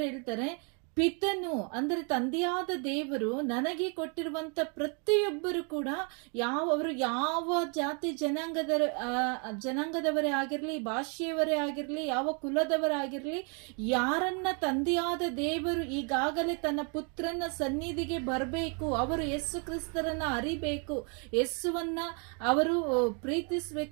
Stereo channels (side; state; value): left; quieter; 37.2 dB